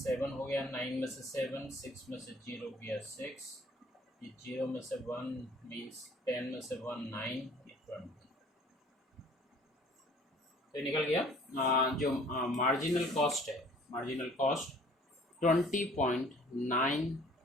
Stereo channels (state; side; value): normal; both; correlation 0.53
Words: हो गया, 9 में से 7, 6 में से 0 गया 6, ये 0 में से 1 मीन्स 10 में से 1 9, ये 20। तो निकल गया जो मार्जिनल कॉस्ट है, मार्जिनल कॉस्ट